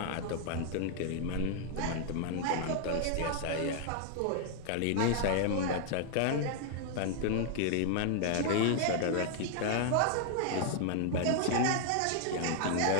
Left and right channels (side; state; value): both; different; correlation 0.00